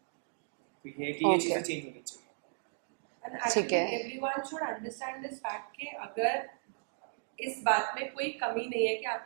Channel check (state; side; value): silent; left; digital silence